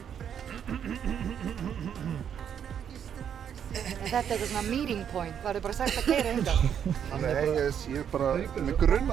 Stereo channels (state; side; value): quieter; left; 8.5 dB